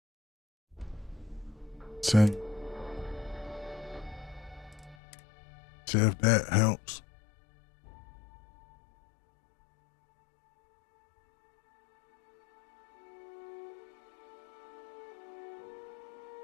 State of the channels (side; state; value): right; drops out; at 5.0 s